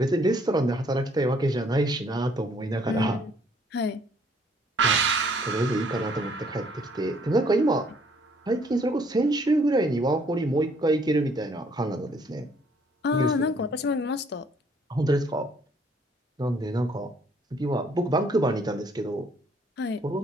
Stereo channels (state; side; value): normal; both; correlation 0.64